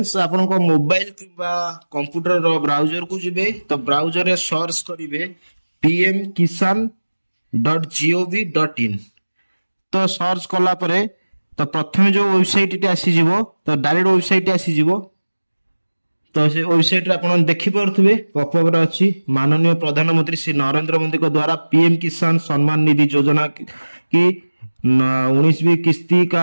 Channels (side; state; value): both; inverted; correlation -1.00